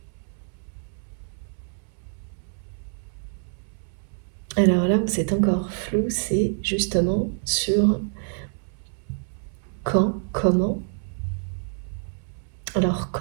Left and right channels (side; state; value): left; silent; 61 dB below the other